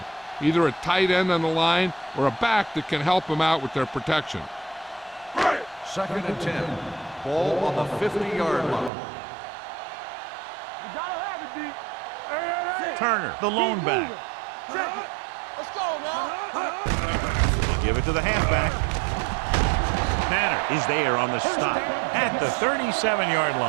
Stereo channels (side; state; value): left; drops out; at 8.9 s